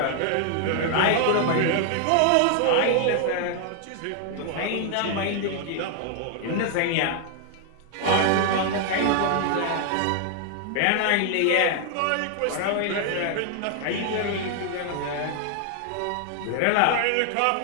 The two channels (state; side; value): different; both; correlation 0.00